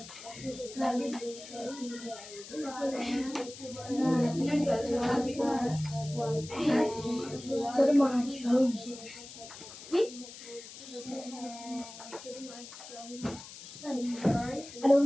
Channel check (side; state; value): left; noise; hiss, 14 dB below the sound